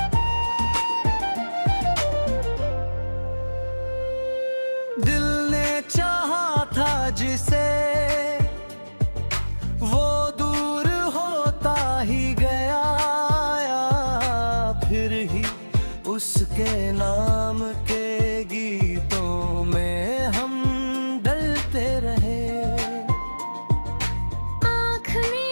दिल ने चाहा था जिसे वो दूर होता ही गया, फिर ही उसके नाम के गीतों में हम डलते रहे। आँख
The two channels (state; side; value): inverted; both; correlation -1.00